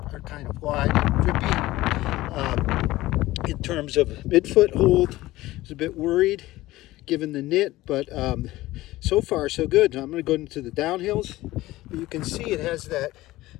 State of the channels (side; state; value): right; quieter; 17.4 dB